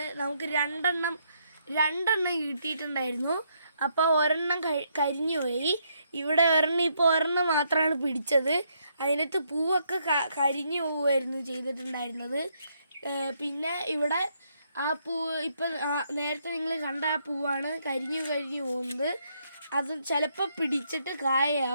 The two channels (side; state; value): both; inverted; correlation -0.74